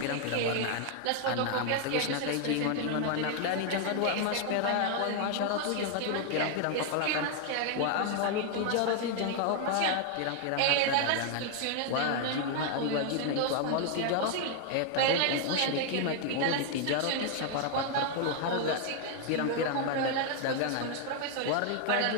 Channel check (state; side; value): different; both; correlation 0.00